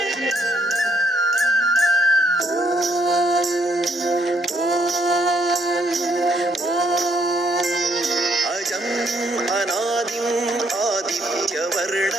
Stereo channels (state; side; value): normal; both; correlation 0.69